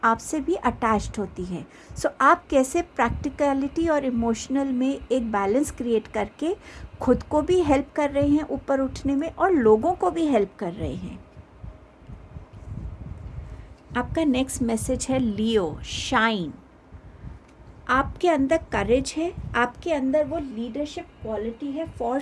आपसे भी अटैच्ड होती है। सो आप कैसे प्रैक्टिकलिटी और इमोशनल में एक बैलेंस क्रिएट करके खुद को भी हेल्प कर रहे हैं ऊपर उठने में और लोगों को भी हेल्प कर रहे हैं। आपका नेक्स्ट मैसेज है लियो, शाइन। आपके अंदर करेज है, आपके अंदर वो लीडरशिप क्वालिटी है फॉर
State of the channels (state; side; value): identical; both; correlation 1.00